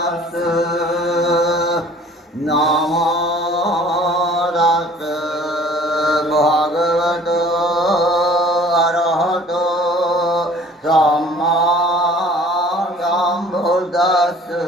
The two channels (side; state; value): both; normal; correlation 0.50